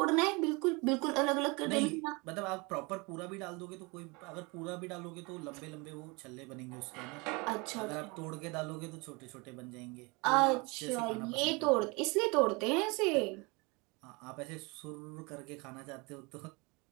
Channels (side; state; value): left; quieter; 27.6 dB